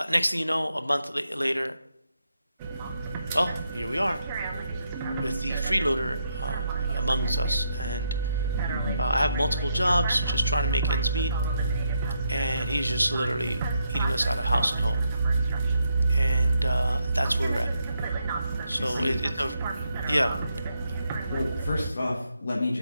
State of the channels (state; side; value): inverted; both; correlation -0.80